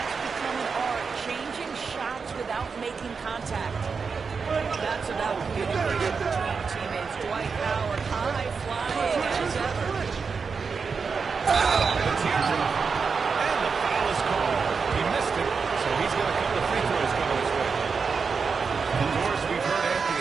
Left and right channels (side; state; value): left; quieter; 5.3 dB